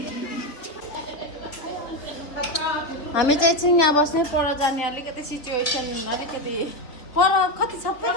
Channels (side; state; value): right; late; 3.7 ms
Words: हामी चाहिँ एकछिन यहाँ बस्ने पर जाने अलिकति सिचुएसन अलिकति पर कति